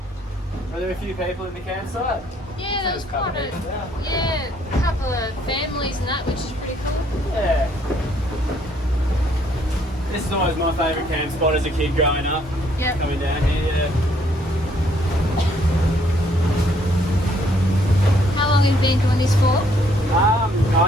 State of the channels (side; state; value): both; normal; correlation 0.66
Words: Are there a few people in the campsite? Yeah, there was There's a couple quite a, people there. yeah, a couple of families and that, which is pretty cool. Yeah. This is always my favourite camp spot as a kid growing up. Yep. Coming down here, yeah. How long have you been doing this for?